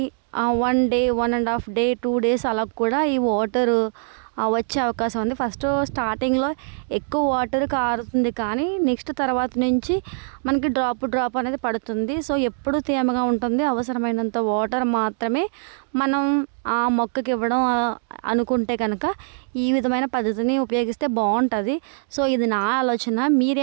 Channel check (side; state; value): left; silent; digital silence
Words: 1 డే, 1.5 డే, 2 డేస్ అలా కూడా ఈ వాటర్ వచ్చే అవకాశం ఉంది. ఫస్ట్ స్టార్టింగ్లో ఎక్కువ వాటర్ కారుతుంది, కానీ నెక్స్ట్ తర్వాత నుంచి మనకి డ్రాప్ అనేది పడుతుంది. సో ఎప్పుడు తేమగా ఉంటుంది. అవసరమైనంత వాటర్ మాత్రమే మనం ఆ మొక్కకి ఇవ్వడం అనుకుంటే కనుక ఈ విధమైన పద్ధతిని ఉపయోగిస్తే బాగుంటుంది. సో ఇది నా ఆలోచన.